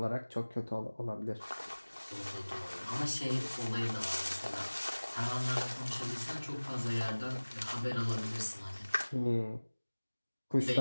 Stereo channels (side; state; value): both; inverted; correlation -1.00